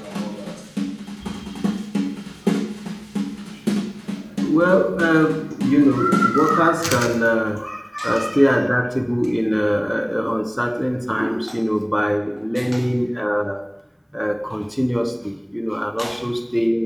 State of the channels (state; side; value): identical; both; correlation 1.00